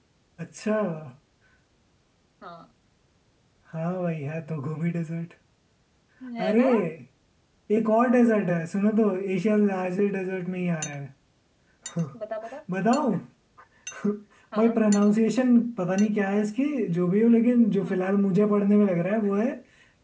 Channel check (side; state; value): both; identical; correlation 1.00